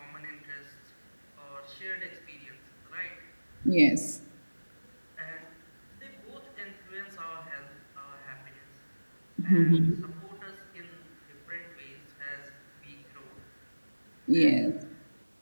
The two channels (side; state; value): both; inverted; correlation -1.00